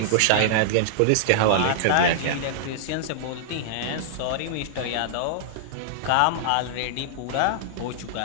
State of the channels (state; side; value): different; both; correlation -0.01